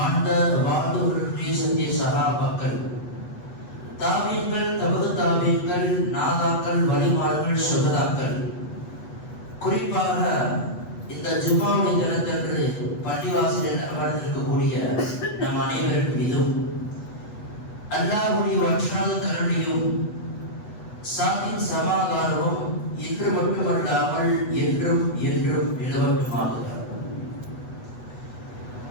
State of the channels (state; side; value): late; right; 8.2 ms